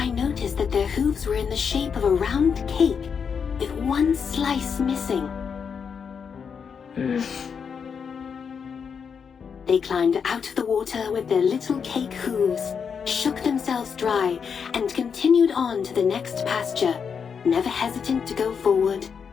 noticed that their hooves were in the shape of a round cake, with one slice missing. They climbed out of the water with their little cake hooves, shook themselves dry, and continued on to the next pasture, never hesitant to go forward,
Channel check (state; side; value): quieter; right; 6.5 dB